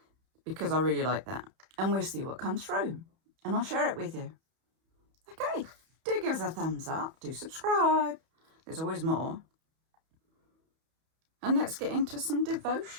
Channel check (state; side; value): late; left; 31 ms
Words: because I really like that. And we'll see what comes through. And I'll share it with you. Okay, do give us a thumbs up. Do subscribe. There's always more. And let's get into some